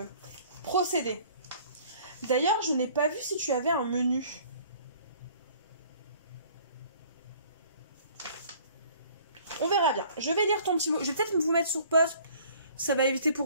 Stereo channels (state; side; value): inverted; both; correlation -0.53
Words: procédé. D'ailleurs, je n'ai pas vu si tu avais un menu. On verra bien. Je vais lire ton petit mot. Je vais peut-être vous mettre sur pause. Ça va éviter